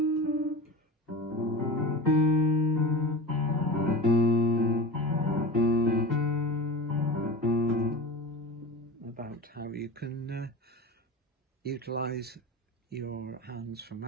how you can utilize your hands for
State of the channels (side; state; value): both; normal; correlation 0.30